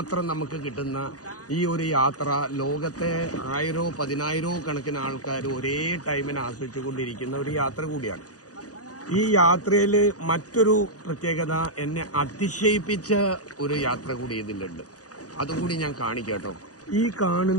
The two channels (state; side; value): late; right; 0.67 ms